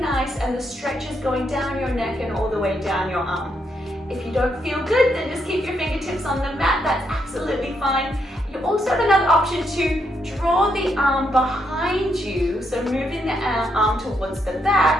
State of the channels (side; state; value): both; normal; correlation 0.78